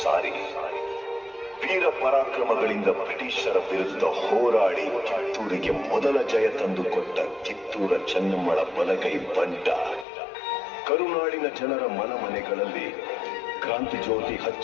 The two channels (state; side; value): drops out; right; at 10.1 s